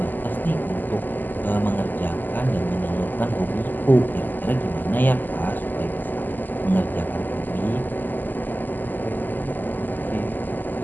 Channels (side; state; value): right; late; 0.087 ms